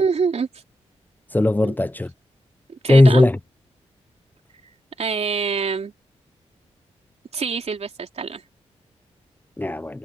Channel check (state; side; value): normal; both; correlation 0.86